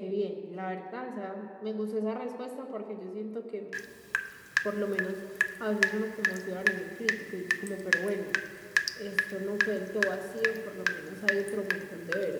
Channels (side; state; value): both; identical; correlation 1.00